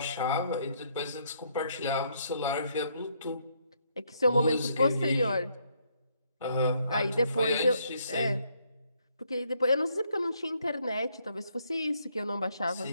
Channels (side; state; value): both; inverted; correlation -0.71